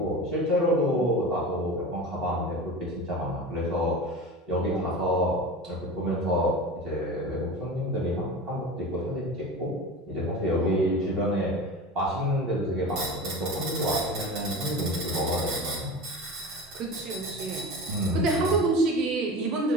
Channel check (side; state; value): both; normal; correlation 0.31